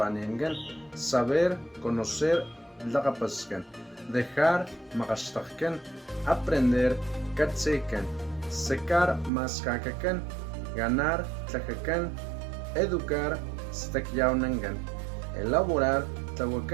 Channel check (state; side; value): drops out; left; at 9.3 s